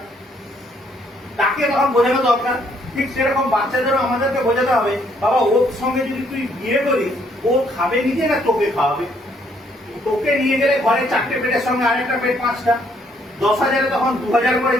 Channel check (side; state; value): both; normal; correlation 0.68